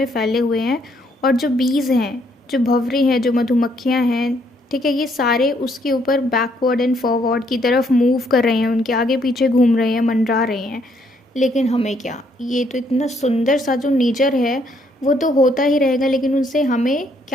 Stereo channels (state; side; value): normal; both; correlation 0.70